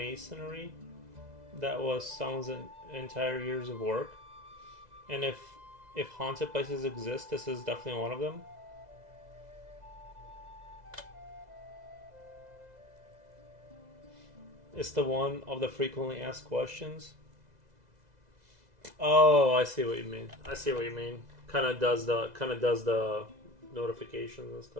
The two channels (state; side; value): late; left; 2.0 ms